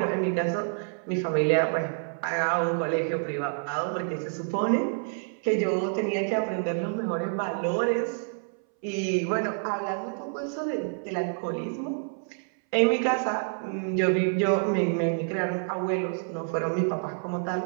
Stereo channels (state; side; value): silent; left; 59 dB below the other